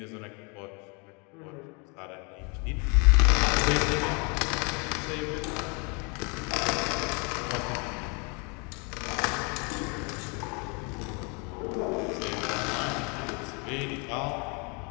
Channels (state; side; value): quieter; right; 32.7 dB